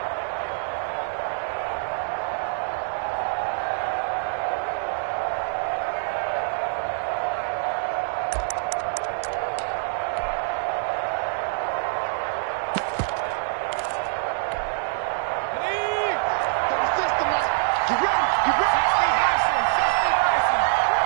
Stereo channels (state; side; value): silent; left; 57 dB below the other